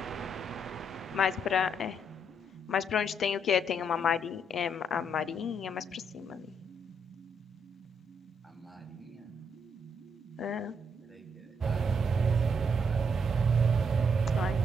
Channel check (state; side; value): normal; both; correlation 0.74